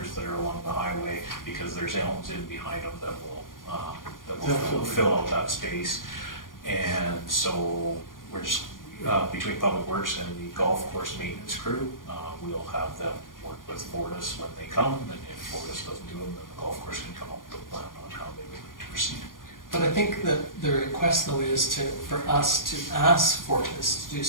that are along the highway because there's elms in behind them that will fill out that space. And so we're just between Public Works and the golf course maintenance crew, we'll have them work with Fortis when they come, and if Fortis doesn't do them, then the golf course can come up with a plan on how they would like to proceed. But I think that the request though is for us to ask Fortis to do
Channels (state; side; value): late; right; 0.90 ms